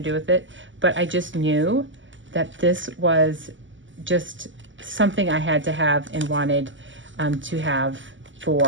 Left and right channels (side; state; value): left; late; 0.55 ms